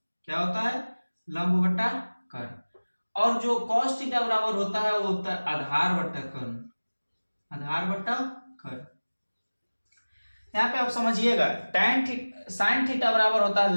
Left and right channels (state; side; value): inverted; both; correlation -1.00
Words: क्या होता है, लंब बट्टा कर्ण। और जो cos थीटा बराबर होता है वो होता है आधार बट्टा कर्ण। आधार बट्टा कर्ण। यहाँ पे आप समझिएगा साइन थीटा बराबर होता है